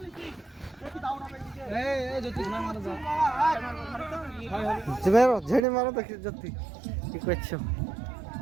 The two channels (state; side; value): drops out; left; at 5.6 s